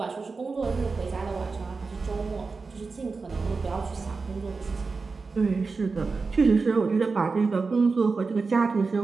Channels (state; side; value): quieter; left; 4.3 dB